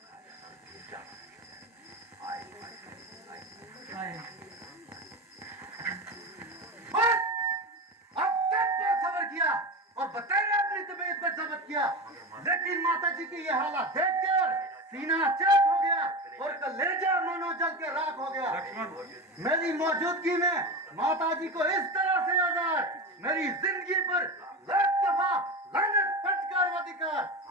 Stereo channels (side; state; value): both; normal; correlation 0.23